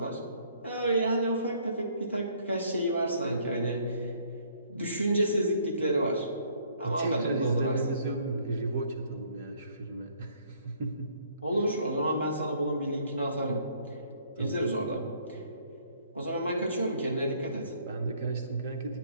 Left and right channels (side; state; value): both; inverted; correlation -0.62